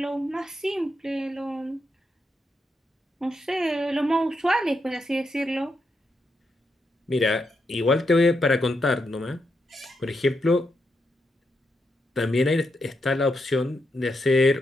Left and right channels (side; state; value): both; normal; correlation 0.83